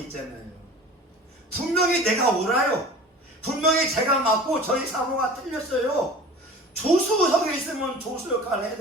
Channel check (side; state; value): both; normal; correlation 0.40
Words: 있잖아요. 분명히 내가 옳아요. 분명히 제가 맞고 저희 사모가 틀렸어요. 조수석에 있으면 조수 역할을 해야